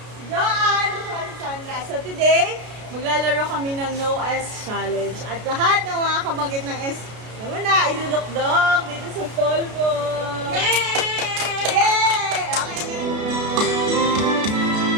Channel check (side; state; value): left; late; 33 ms